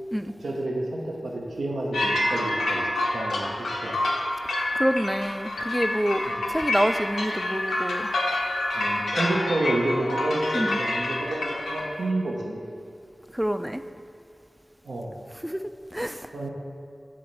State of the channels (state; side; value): normal; both; correlation 0.94